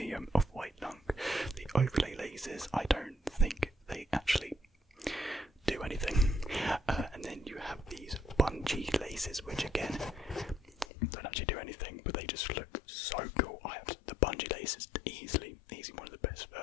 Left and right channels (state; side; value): drops out; right; at 10.9 s